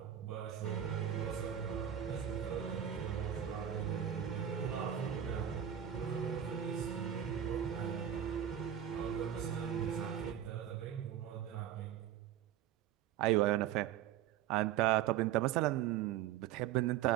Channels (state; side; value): quieter; left; 10.2 dB